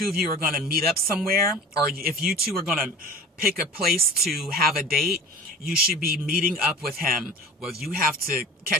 of you are going to meet up somewhere, or if you two are going to pick a place to have a date, you should be meeting up with him. Whether you have to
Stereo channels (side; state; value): both; normal; correlation 0.39